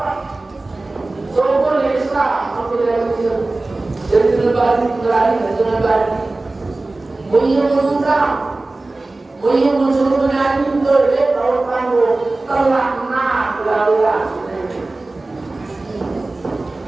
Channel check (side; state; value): left; quieter; 3.1 dB